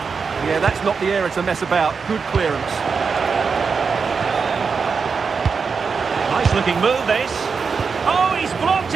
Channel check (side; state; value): left; quieter; 5.4 dB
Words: Yeah, that's not the area to mess about. Good clearance. Nice looking move, this. Oh, he's blocked